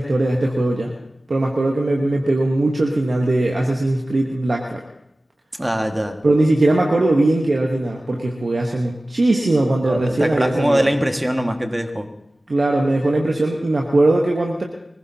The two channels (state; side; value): normal; both; correlation 0.97